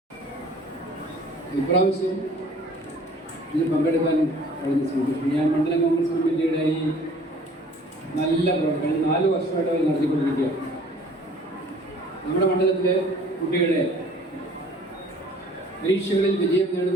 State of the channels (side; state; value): both; normal; correlation 0.52